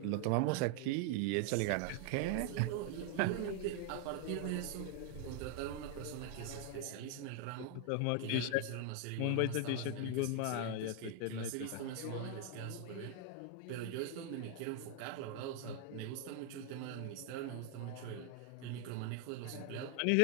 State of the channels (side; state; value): both; different; correlation 0.00